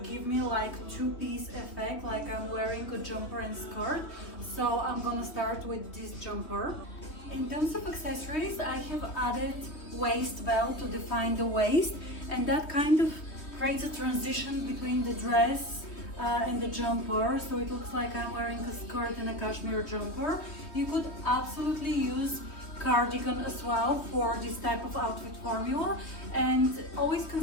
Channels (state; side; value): late; right; 3.2 ms